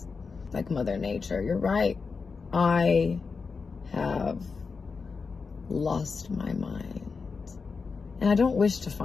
Like Mother Nature. You're right. I have lost my mind. And I don't wish to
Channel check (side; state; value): right; quieter; 4.9 dB